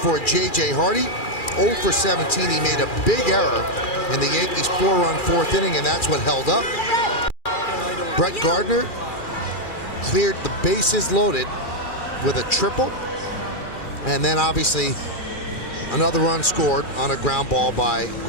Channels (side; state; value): right; late; 2.4 ms